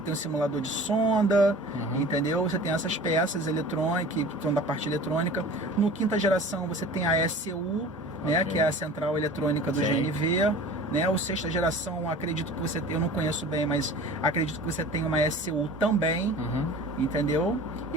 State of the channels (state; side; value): normal; both; correlation 0.41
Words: o simulador de sonda, entendeu? Você tem essas peças eletrônicas, que são da parte eletrônica. No quinta geração você tem a ECU, né, que é a central eletrônica do GNV, né? O sexta geração, acredito que você, eu não conheço bem, mas acredito que você tem uma ECU também, entendeu?